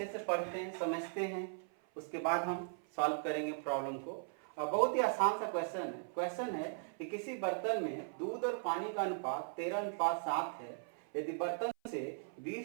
से पढ़ते हैं, समझते हैं, उसके बाद हम सॉल्व करेंगे प्रॉब्लम को। और बहुत ही आसान सा क्वेश्चन है कि किसी बर्तन में दूध और पानी का अनुपात 13:7 है। यदि बर्तन से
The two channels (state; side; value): silent; left; 52 dB below the other